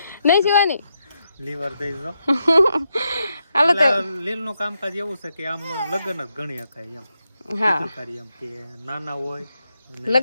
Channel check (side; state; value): both; inverted; correlation -0.83